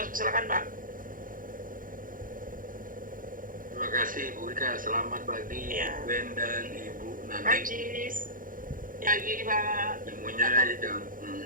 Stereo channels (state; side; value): late; left; 0.40 ms